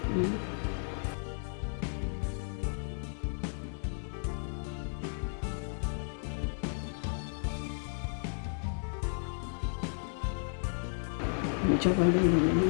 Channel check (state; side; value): silent; right; 55 dB below the other